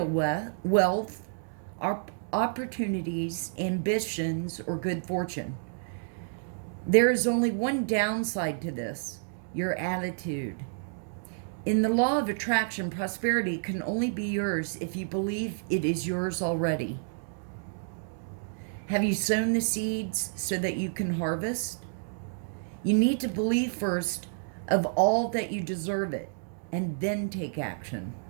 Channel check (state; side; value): silent; left; digital silence